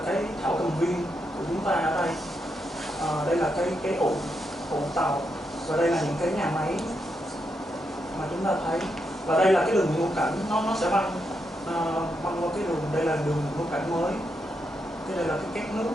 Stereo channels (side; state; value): both; normal; correlation 0.82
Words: cái thảo cầm viên của chúng ta ở đây. Đây là cái ụ tàu, và đây là những cái nhà máy mà chúng ta thấy. Và đây là cái đường ngũ cảnh, nó sẽ băng qua cái đường, đây là đường ngũ cảnh mới, cái đây là cái két nước.